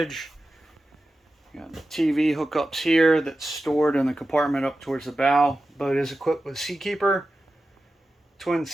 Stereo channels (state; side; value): normal; both; correlation 0.93